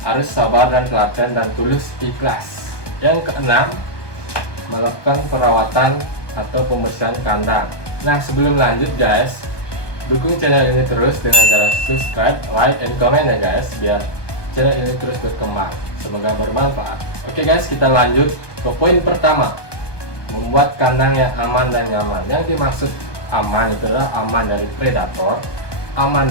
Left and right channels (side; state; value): right; late; 1.2 ms